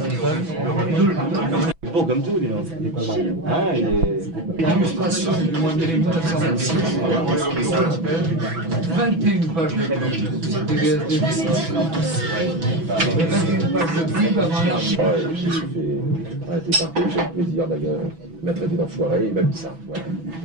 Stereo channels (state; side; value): late; left; 6.1 ms